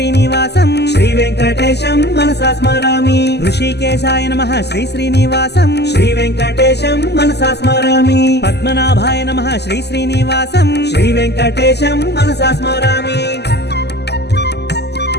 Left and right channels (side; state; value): right; late; 0.49 ms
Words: శ్రీ వెంకటేశం మనసా స్మరామి ఋషికేశాయ నమః శ్రీ శ్రీనివాసం శ్రీ వెంకటేశం మనసా స్మరామి పద్మనాభాయ నమః శ్రీ శ్రీనివాసం శ్రీ వెంకటేశం మనసా స్మరామి